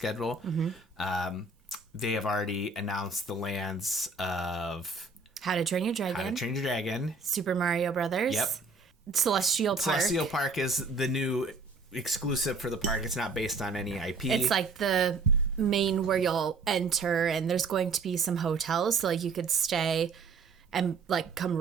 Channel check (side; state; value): left; quieter; 4.0 dB